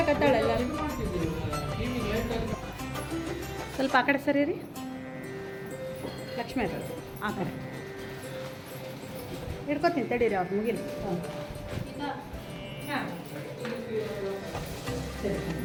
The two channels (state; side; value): identical; both; correlation 1.00